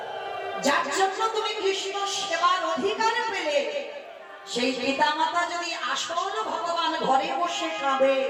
যার জন্য তুমি কৃষ্ণ সেবার অধিকার পেলে, সেই পিতা মাতা যদি আসল ভগবান ঘরে বসে কাঁদে,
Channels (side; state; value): both; identical; correlation 1.00